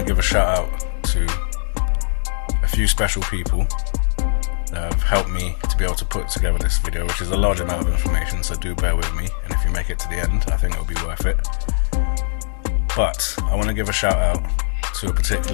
give a shout out to a few special people that have helped me to be able to put together this video, which is a large amount of information, so do bear with me, and if you make it to the end, I think it'll be worth it. But I want to give a shout out to a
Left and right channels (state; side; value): silent; right; digital silence